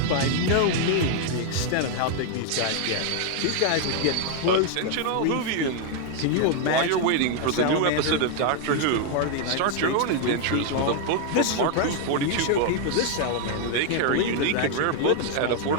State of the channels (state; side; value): different; both; correlation 0.00